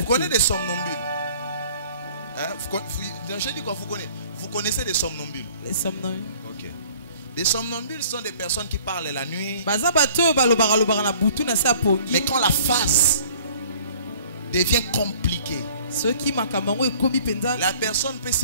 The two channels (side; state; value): both; inverted; correlation -0.53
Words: connaissez des somnambules? Je dis quoi, vous connaissez des somnambules? Les somnambules. Ok. Des somnambules sont des personnes qui parlent la nuit. Mais quand la phase devient compliquée, la personne peut